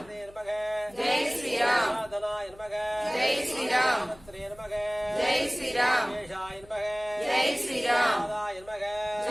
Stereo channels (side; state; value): left; noise; hum, 24 dB below the sound